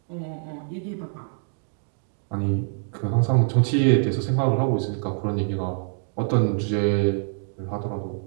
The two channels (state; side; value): silent; left; 62 dB below the other